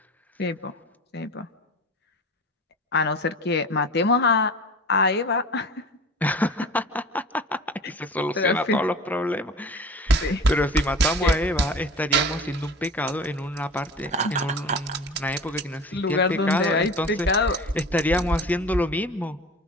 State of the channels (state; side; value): normal; both; correlation 0.38